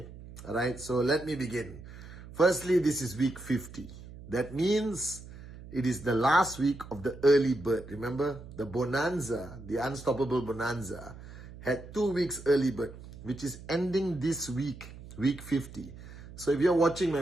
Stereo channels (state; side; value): noise; right; hum, 16 dB below the sound